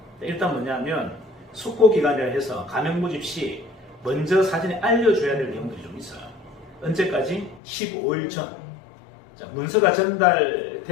일단 뭐냐면 숙고기간이라 해서 가맹 모집 시 먼저 사전에 알려줘야 될 내용들이 좀 있어요. 언제까지? 15일 전. 자, 문서가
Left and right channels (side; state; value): right; drops out; at 7.6 s